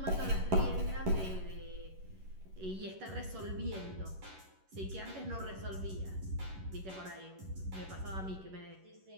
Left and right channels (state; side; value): late; left; 11 ms